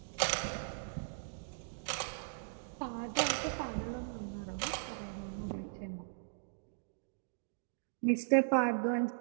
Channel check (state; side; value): silent; left; digital silence